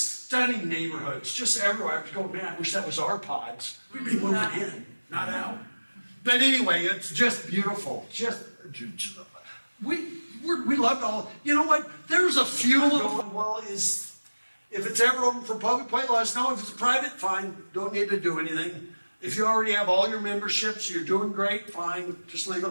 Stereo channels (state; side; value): inverted; both; correlation -1.00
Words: stunning neighborhoods, just everywhere. I was going, man, I wish that was our pods. We'd be moving in, not out. But anyway, it's just beautiful. We loved all. You know what? There's a few little. Well, if it's ever open for public play, let us know. If it's private, fine. Don't need to do anything. If you already have all your memberships, you're doing great, fine. Just leave it